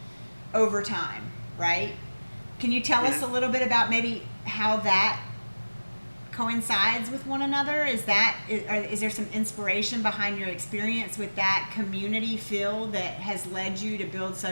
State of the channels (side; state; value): both; inverted; correlation -1.00